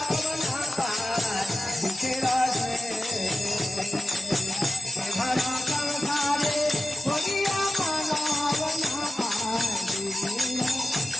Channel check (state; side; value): normal; both; correlation 0.94